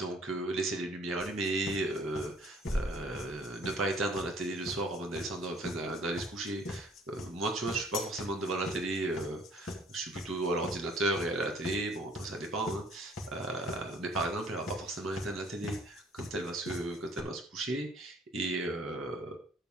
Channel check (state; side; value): normal; both; correlation 0.57